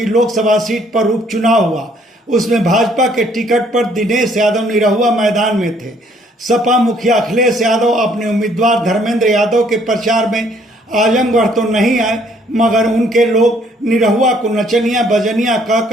लोकसभा सीट पर उपचुनाव हुआ। उसमें भाजपा के टिकट पर दिनेश यादव निरहुआ मैदान में थे। सपा मुखिया अखिलेश यादव अपने उम्मीदवार धर्मेंद्र यादव के प्रचार में आजमगढ़ तो नहीं आए, मगर उनके लोग निरहुआ को नचनिया बजनिया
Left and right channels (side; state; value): both; normal; correlation 0.64